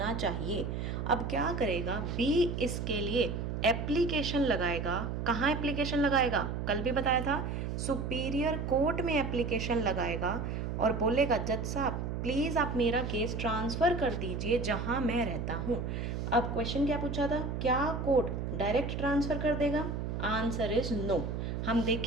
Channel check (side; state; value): right; noise; hum, 3 dB below the sound